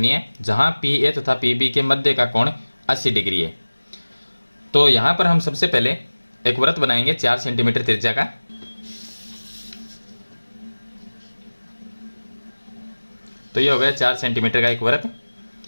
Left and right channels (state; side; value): inverted; both; correlation -1.00